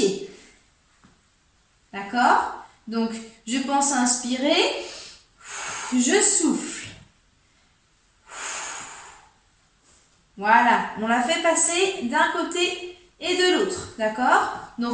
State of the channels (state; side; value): identical; both; correlation 1.00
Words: D'accord? Donc, je pense à inspirer, je souffle. Voilà, on l'a fait passer d'un côté et de l'autre, d'accord?